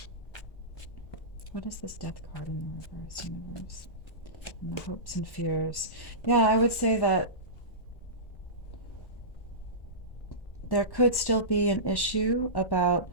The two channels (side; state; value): right; late; 1.1 ms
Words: What is this Death card in the reverse, universe? And the hopes and fears. Yeah, I would say that there could still be an issue about